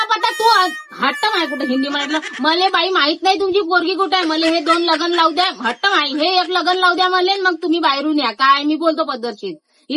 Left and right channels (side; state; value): both; identical; correlation 1.00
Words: पता. तू हट्ट माय कुठे हिंदी म्हटलं मले बाई माहित नाही तुमची पोरगी कुठे आहे. मला हे 2 लग्न लावू द्या. हट्ट माई हे 1 लग्न लावू द्या मले, मग तुम्ही बाहेरून या. काय मी बोलतो पद्धतशीर,